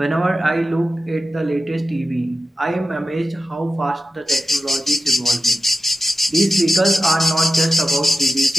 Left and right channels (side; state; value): both; normal; correlation 0.95